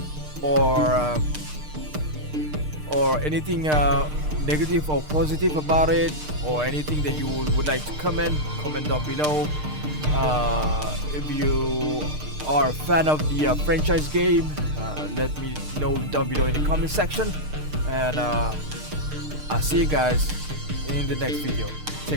or anything negative or positive about it, or anything that you would like to comment down below. If you are a fan of the franchise game, let me know down below in the comment section, and I'll see you guys in the next video.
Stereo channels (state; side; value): late; left; 6.6 ms